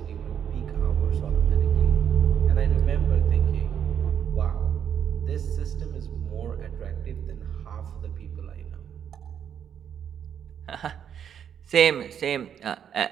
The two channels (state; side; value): quieter; left; 8.5 dB